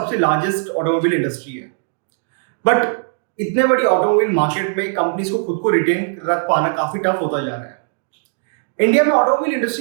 लार्जेस्ट ऑटोमोबाइल इंडस्ट्री है। बट इतने बड़ी ऑटोमोबाइल मार्केट में कंपनीज को खुद को रिटेन रख पाना काफी टफ होता जा रहा है। इंडिया में ऑटोमोबाइल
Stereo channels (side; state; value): left; silent; digital silence